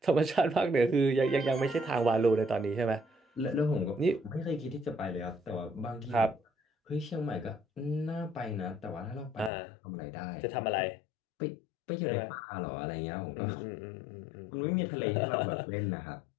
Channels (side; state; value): right; drops out; at 9.5 s